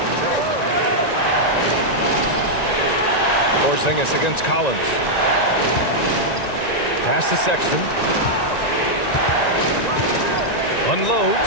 Porzingis against Collins. Pass to Sexton.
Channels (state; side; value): late; right; 1.9 ms